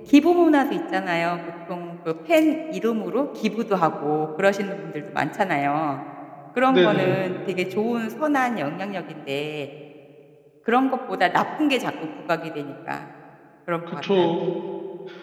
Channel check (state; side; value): identical; both; correlation 1.00